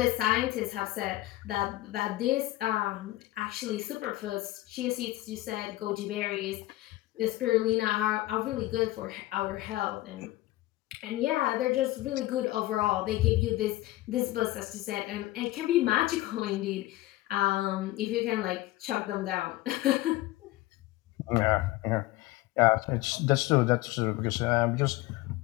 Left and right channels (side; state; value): right; quieter; 17.6 dB